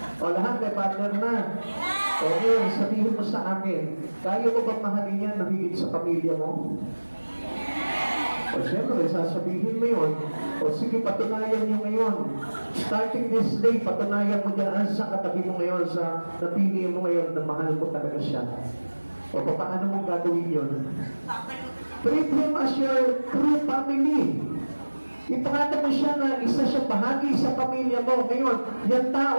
O lahat may partner na. Okay, sabihin mo sa akin, kaya mo bang mahalin yan na higit sa pamilya mo? O siyempre, sasabihin mo yun. O sige, patunayan nyo ngayon. Starting this day, patunayan mo dyan sa katabi mo ngayon, sa napili mo ngayon na mahal mo talaga siya. O paano mo gagawin yun? Treat him as your true family. Ipakita mo siya na isa siya bahagi sa pamilya mo. Ngayon, yung tao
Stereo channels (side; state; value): both; inverted; correlation -1.00